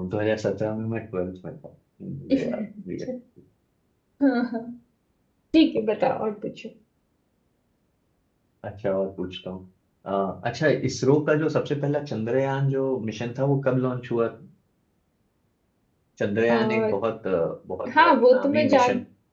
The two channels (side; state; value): both; identical; correlation 1.00